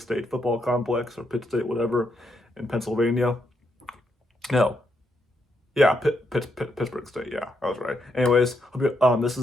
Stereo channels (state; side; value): normal; both; correlation 0.78